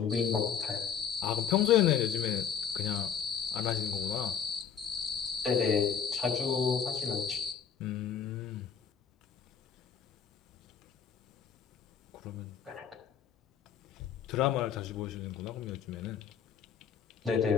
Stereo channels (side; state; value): right; quieter; 7.6 dB